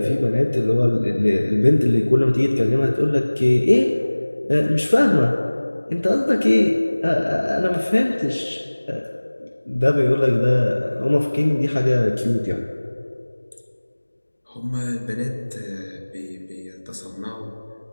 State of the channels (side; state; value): both; inverted; correlation -1.00